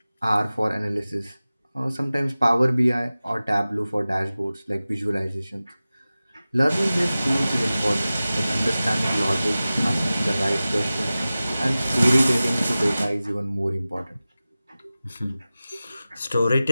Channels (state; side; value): inverted; both; correlation -0.96